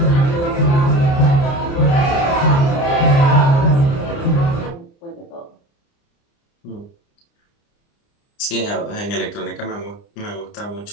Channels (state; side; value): late; right; 29 ms